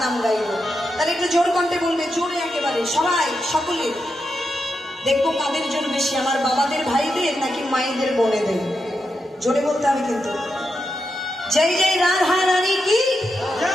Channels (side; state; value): both; normal; correlation 0.86